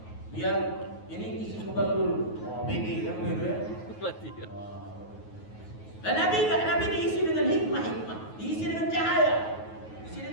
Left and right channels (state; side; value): late; right; 9.4 ms